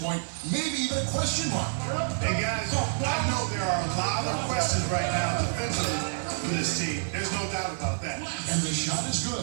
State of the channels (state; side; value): silent; left; 59 dB below the other